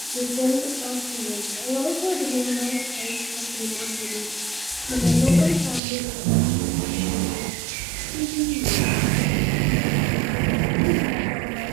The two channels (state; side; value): drops out; left; at 5.8 s